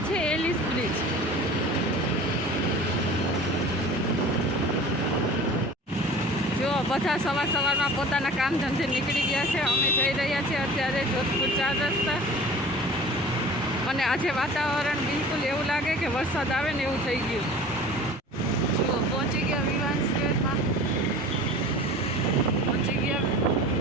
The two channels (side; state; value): both; normal; correlation 0.42